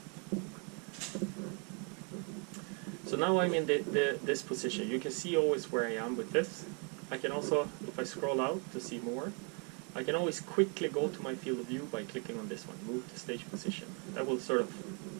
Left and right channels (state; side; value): quieter; left; 36.6 dB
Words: So now I'm in this position. You can see always where I am with this. I can also, if I scroll out to see more, I can always quickly go to my field of view by clicking on this one, move to stage position. That will sort of